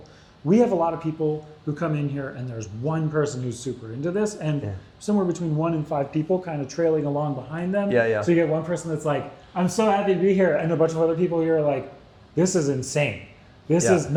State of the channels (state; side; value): identical; both; correlation 1.00